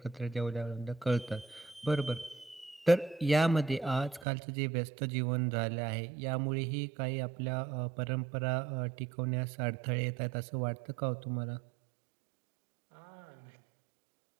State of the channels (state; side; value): drops out; left; at 4.2 s